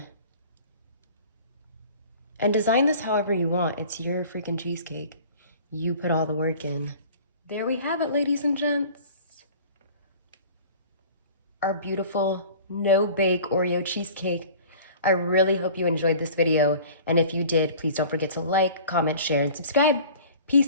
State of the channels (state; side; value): inverted; both; correlation -0.44